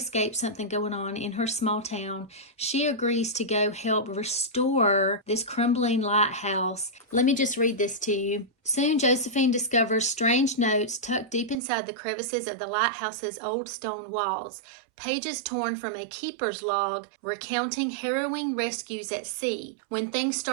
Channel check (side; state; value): left; drops out; at 11.6 s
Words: something going on in her small town. She agrees to go help restore this crumbling lighthouse. Let me just read this to you. Soon, Josephine discovers strange notes tucked deep inside the crevices of the lighthouse's old stone walls. Pages torn from a keeper's log recounting harrowing rescues at sea. When things